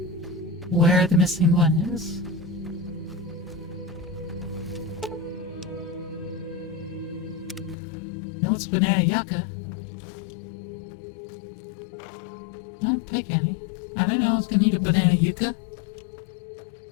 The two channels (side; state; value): right; drops out; at 7.8 s